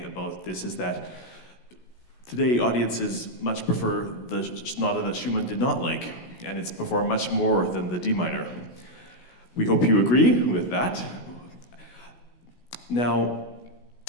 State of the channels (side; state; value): right; late; 16 ms